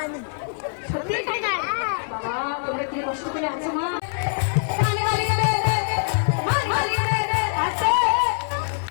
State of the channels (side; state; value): right; silent; digital silence